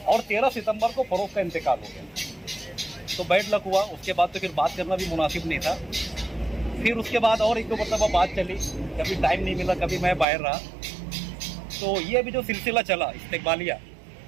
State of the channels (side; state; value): left; drops out; at 10.2 s